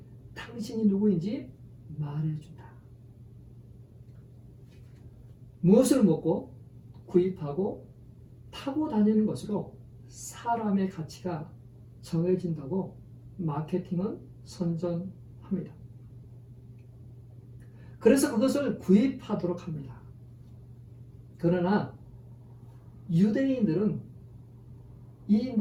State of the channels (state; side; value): identical; both; correlation 1.00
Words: 당신이 누구인지 말해준다. 무엇을 먹고 구입하고 타고 다니는 것으로 사람의 가치가 정해진다고 마케팅은 선전합니다. 그래서 그것을 구입하도록 합니다. 그러나 유대인들은 이